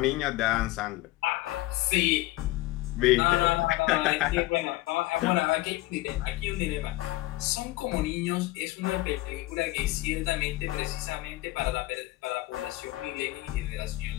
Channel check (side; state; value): right; quieter; 18.9 dB